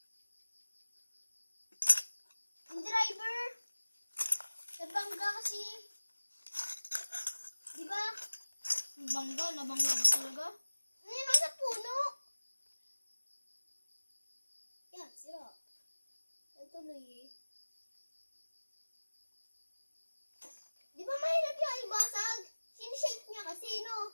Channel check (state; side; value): inverted; both; correlation -1.00